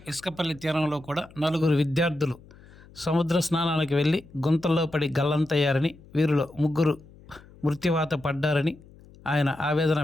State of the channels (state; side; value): noise; left; hum, 23 dB below the sound